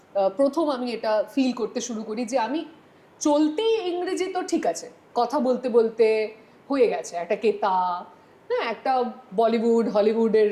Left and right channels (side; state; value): both; identical; correlation 1.00